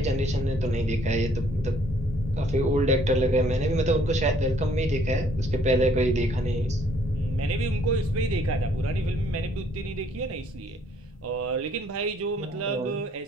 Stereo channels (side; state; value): both; normal; correlation 0.63